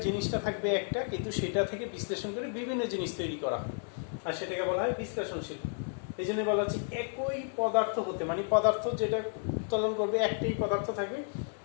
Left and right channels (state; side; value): silent; right; 56 dB below the other